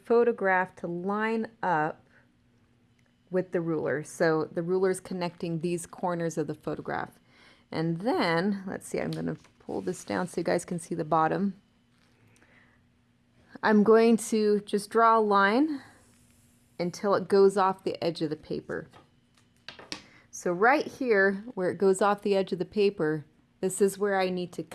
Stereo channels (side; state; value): both; identical; correlation 1.00